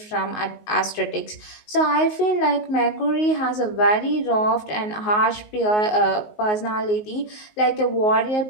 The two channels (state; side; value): late; right; 19 ms